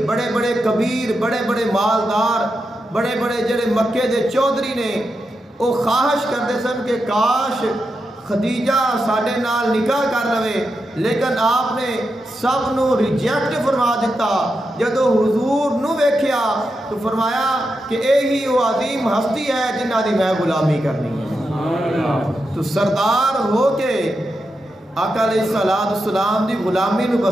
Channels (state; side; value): normal; both; correlation 0.87